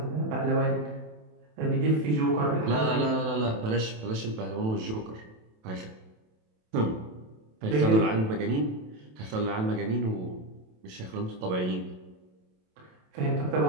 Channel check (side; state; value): left; late; 27 ms